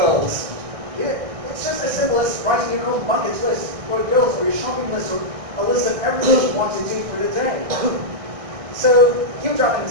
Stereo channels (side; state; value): left; late; 1.6 ms